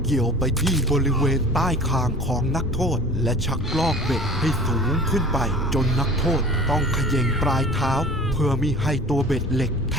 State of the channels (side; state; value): both; normal; correlation 0.42